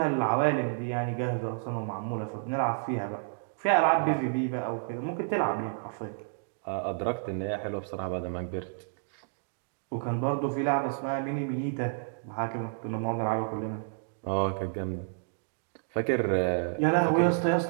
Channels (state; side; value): silent; left; digital silence